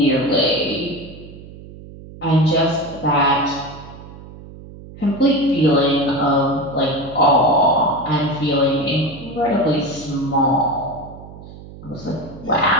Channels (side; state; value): right; noise; hum, 17 dB below the sound